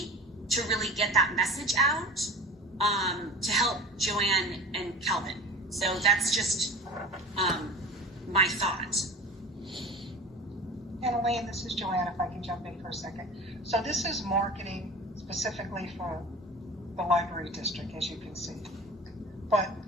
to really get that message out, to help Joanne and Kelvin. So that's just my thought. And Elaine, this is Joanne, if I can jump in for a second. So this is marketing specifically for the library district, as you can see. But,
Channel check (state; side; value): normal; both; correlation 0.36